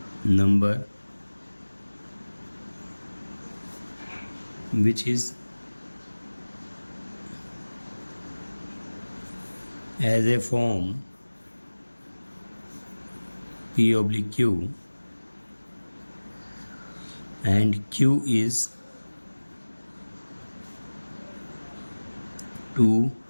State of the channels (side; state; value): both; inverted; correlation -1.00